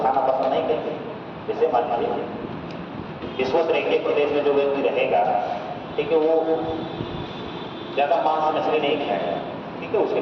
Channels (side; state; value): both; identical; correlation 1.00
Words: खाना पसंद नहीं करते। जैसे मान लीजिए विश्व रेखीय प्रदेश में जो व्यक्ति रहेगा, ठीक है, वो ज़्यादा मांस मछली नहीं खाएगा। ठीक है, उसके